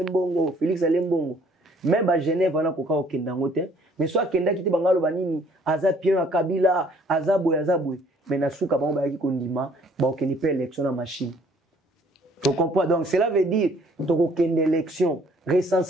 Félix Alembongo. Même ba Genève wana ko ka okenda ngote, mais soit kenda kiti bangalo banini aza pien à Kabila, azaboy. Mais na souka ba yaki kondima ba okeni pe élection na machine. Tu comprends? Donc cela veut dire to okende élection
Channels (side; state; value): both; normal; correlation 0.60